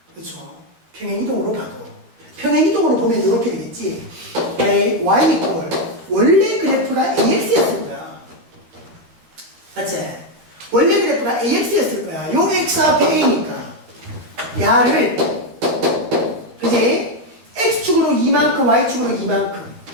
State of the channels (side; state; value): left; late; 13 ms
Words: 그렇죠? 평행이동으로 봐도 평행이동으로 보면 이렇게 되겠지. y 이퀄 원래 그래프가 ax였을 거야. 맞지? 원래 그래프가 ax였을 거야. 요 x 앞에 a니까 야를 그지? x축으로 이만큼 y축으로 이만큼